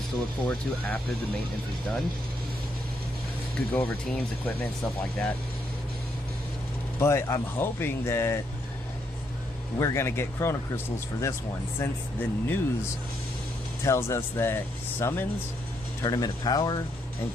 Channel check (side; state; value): both; normal; correlation 0.76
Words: to look forward to after the maintenance is done. Could go over teams, equipment, stuff like that. But I'm hoping that we're going to get Chrono Crystals for this one, since the news tells us that Summons, Tournament of Power, and